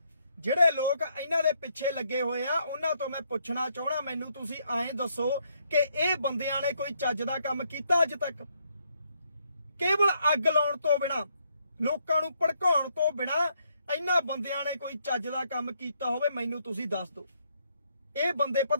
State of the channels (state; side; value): inverted; both; correlation -0.73